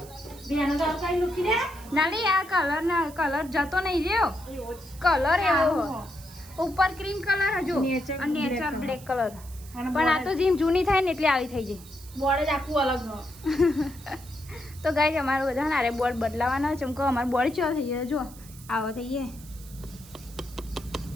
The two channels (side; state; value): right; noise; hiss, 20 dB below the sound